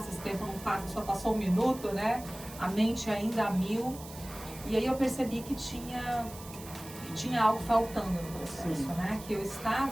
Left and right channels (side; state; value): right; noise; hiss, 16 dB below the sound